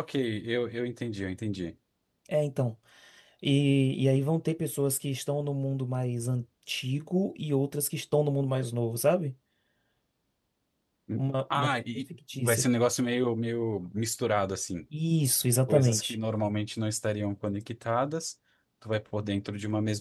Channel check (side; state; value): both; identical; correlation 1.00